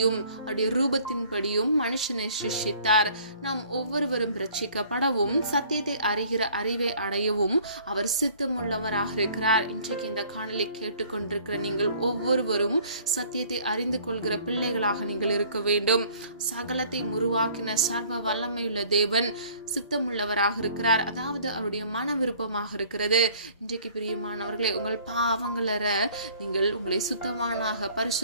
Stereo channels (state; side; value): inverted; both; correlation -0.55